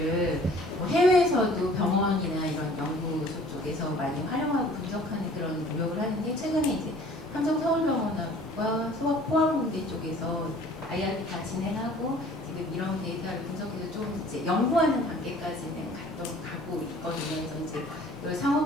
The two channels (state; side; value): normal; both; correlation 0.51